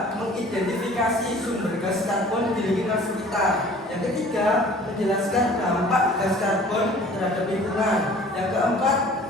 mengidentifikasi sumber gas karbon di lingkungan sekitar. Yang ketiga, menjelaskan dampak gas karbon terhadap lingkungan. Yang keempat,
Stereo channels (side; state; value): both; normal; correlation 0.49